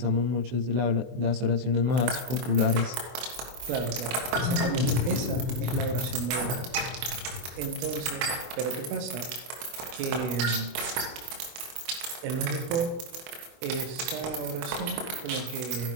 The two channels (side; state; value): left; late; 24 ms